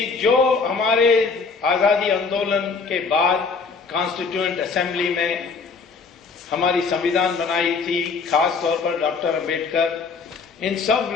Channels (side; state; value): right; quieter; 4.8 dB